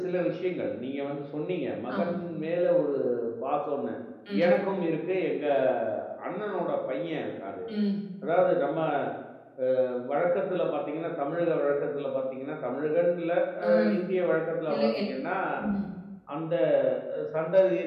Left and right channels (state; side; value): identical; both; correlation 1.00